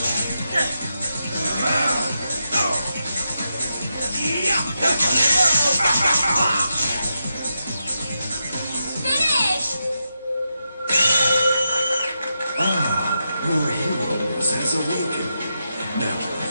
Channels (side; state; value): both; inverted; correlation -0.86